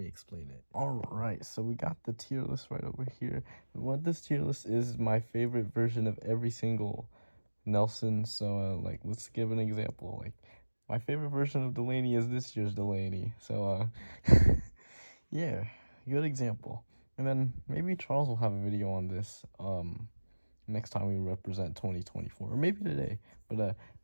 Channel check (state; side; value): inverted; both; correlation -1.00